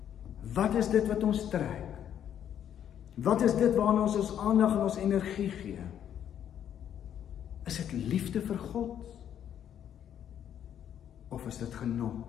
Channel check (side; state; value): right; quieter; 9.7 dB